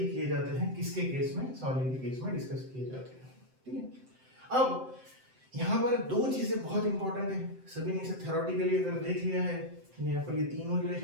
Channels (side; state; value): left; late; 7.7 ms